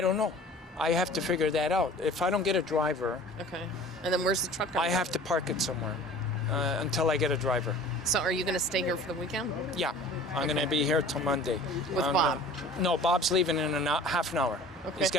don't know. I have to figure that out. If I don't get a driver, okay. And then where's the truck going? I have to park it somewhere until I get a driver. So are you going to stay here for the weekend? Yeah, I'm going to be here till Monday. With Bob? No, Bob's leaving in half an hour. Okay. He's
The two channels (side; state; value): both; normal; correlation 0.44